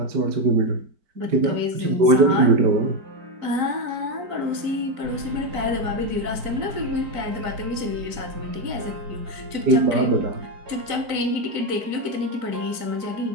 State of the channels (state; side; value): late; left; 4.5 ms